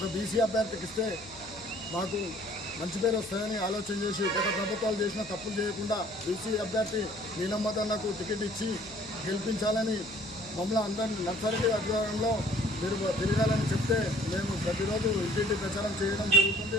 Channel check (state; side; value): noise; left; hum, 22 dB below the sound